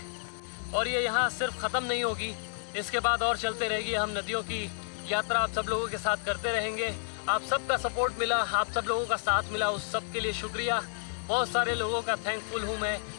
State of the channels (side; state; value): right; silent; digital silence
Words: और ये यहाँ सिर्फ ख़त्म नहीं होगी, इसके बाद और चलते रहेगी। हम नदियों की यात्रा आप सब लोगों के साथ करते रहेंगे। आप सबका सपोर्ट मिला, आप सब लोगों का साथ मिला, उस सब के लिए शुक्रिया। बहुत सारे लोगों का थैंकफुल हूँ मैं।